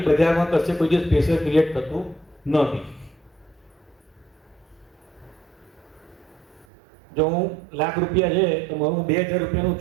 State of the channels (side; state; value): left; drops out; at 6.7 s